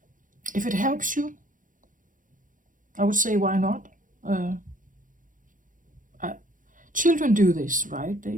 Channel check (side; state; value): left; late; 0.38 ms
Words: If it helps you, I would say why not? Children do this, right?